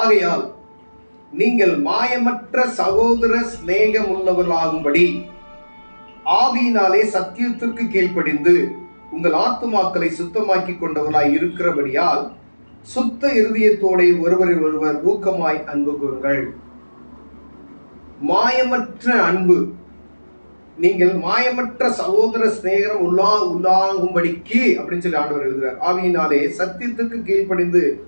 ஆகையால் நீங்கள் மாயமற்ற சகோதர சிநேகம் உள்ளவர்களாகும்படி ஆவியினாலே சத்தியத்திற்கு கீழ்ப்படிந்து உங்கள் ஆத்துமாக்களை சுத்தமாக்கி கொண்டவர்களாய் இருக்கிறபடியால் சுத்த இருதயத்தோட ஒருவரில் ஒருவர் ஊக்கமாய் அன்பு கூறுங்கள். மாயமற்ற அன்பு, நீங்கள் மாயமற்ற சகோதர சிநேகம் உள்ளாகும்படிக்கு அப்படின்னு சொல்லி ஆண்டவர் எழுதுகிறார். ஆவியினாலே சத்தியத்துக்கு கீழ்ப்படிந்து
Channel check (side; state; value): both; inverted; correlation -1.00